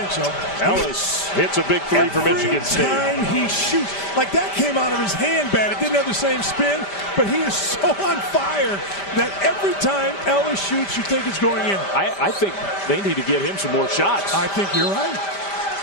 so. Ellis hits a big three for Michigan State. Every time he shoots, like that came out of his hand bad. It didn't have the same spin, but he is so on fire that every time Ellis shoots, you think it's going in. I think they need to get him some more shots. I think you're right.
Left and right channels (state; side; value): late; right; 5.1 ms